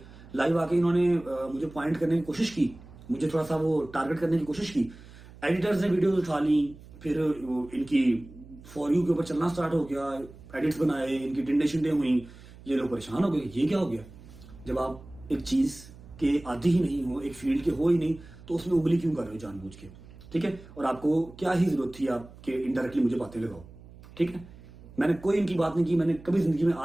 लाइव आके इन्होंने मुझे पॉइंट करने की कोशिश की, मुझे थोड़ा सा वो टारगेट करने की कोशिश की। एडिटर्स ने वीडियोस उठा ली, फिर इनकी फॉर यू के ऊपर चलना स्टार्ट हो गया, एडिट्स बनाए, इनकी टिंडे शिंडे हुई, ये लोग परेशान हो गए, ये क्या हो गया। जब आप एक चीज के आदी ही नहीं हो, एक फील्ड के हो ही नहीं, तो उसमें उंगली क्यों कर रहे हो जानबूझ के, ठीक है। और आपको क्या ही जरूरत थी आपके इनडायरेक्टली मुझे बातें लगाओ, ठीक है। मैंने कोई इनकी बात नहीं की, मैंने कभी जिंदगी में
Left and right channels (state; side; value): noise; right; hum, 19 dB below the sound